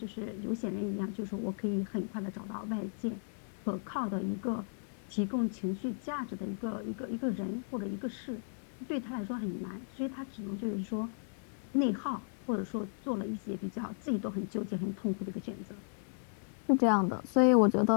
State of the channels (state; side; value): silent; right; 54 dB below the other